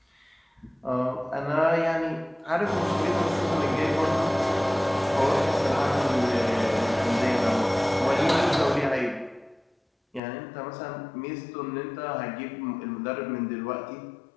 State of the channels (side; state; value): right; drops out; at 10.2 s